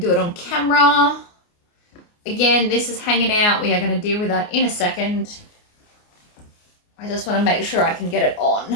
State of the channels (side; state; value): right; late; 29 ms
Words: it on camera. Again, this is hanging out. We are going to deal with that in a second. I just want to make sure I can get it